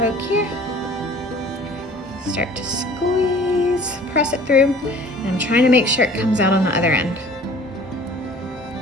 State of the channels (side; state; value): both; normal; correlation 0.49